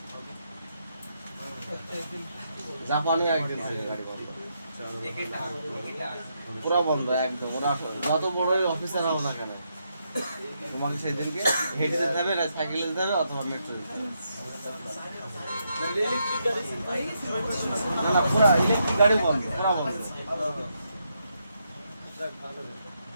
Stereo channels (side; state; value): both; inverted; correlation -0.80